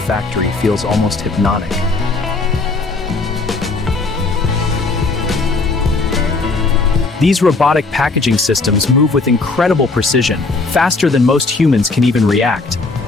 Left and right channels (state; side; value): quieter; right; 3.7 dB